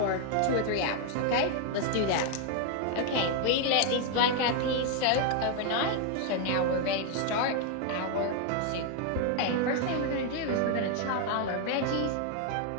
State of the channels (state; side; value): different; both; correlation 0.00